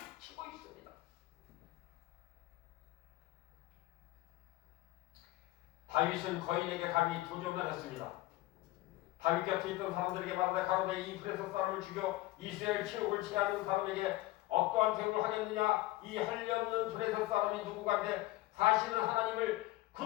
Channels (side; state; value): right; quieter; 18.1 dB